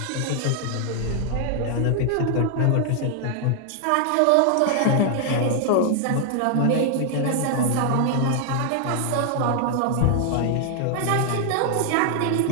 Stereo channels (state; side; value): different; both; correlation 0.00